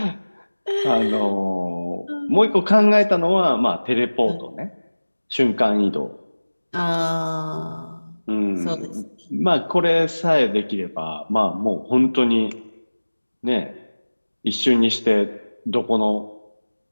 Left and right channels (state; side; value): inverted; both; correlation -1.00